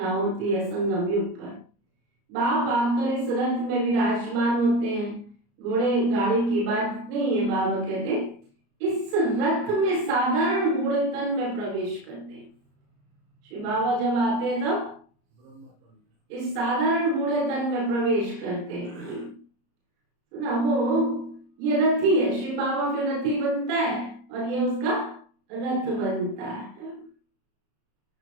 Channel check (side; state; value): left; late; 34 ms